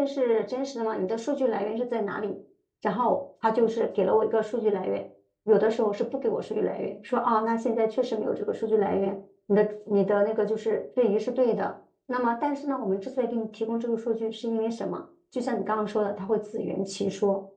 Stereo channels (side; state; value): both; identical; correlation 1.00